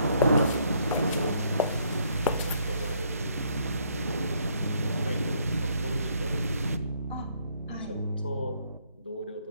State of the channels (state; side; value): inverted; both; correlation -0.68